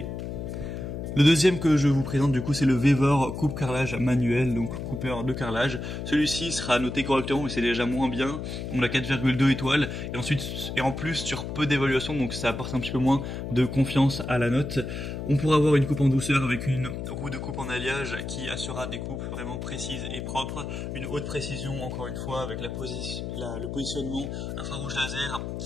Le deuxième que je vous présente du coup c'est le Vevor coupe carrelage manuel, donc coupeur de carrelage. Celui-ci sera noté correctement mais c'est déjà moins bien, on a 4,2 étoiles et en plus sur peu d'évaluation, donc ça apporte un petit peu moins de confiance à la note. On pourra avoir une coupe en douceur avec une roue de coupe en alliage qui assurera des coupes vraiment précises et propres, une haute précision encore une fois avec le positionnement infrarouge laser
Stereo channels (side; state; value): left; noise; hum, 6 dB below the sound